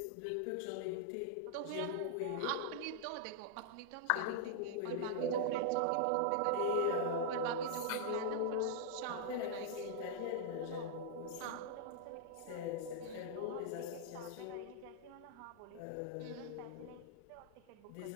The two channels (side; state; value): both; different; correlation -0.01